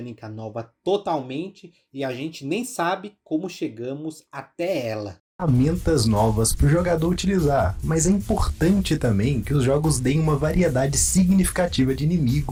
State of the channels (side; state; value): both; identical; correlation 1.00